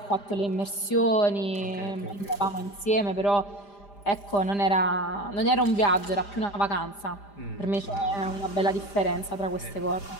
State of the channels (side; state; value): right; late; 5.0 ms